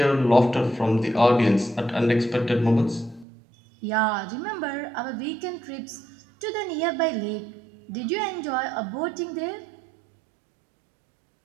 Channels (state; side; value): drops out; left; at 3.2 s